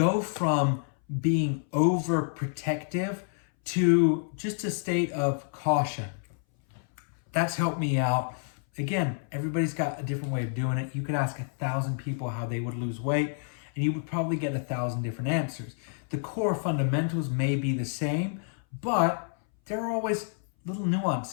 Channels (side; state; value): right; silent; 59 dB below the other